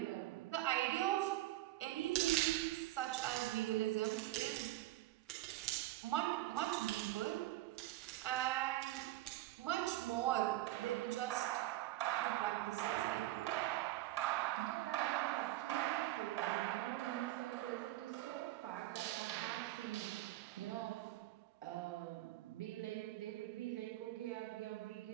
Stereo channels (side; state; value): left; quieter; 16.2 dB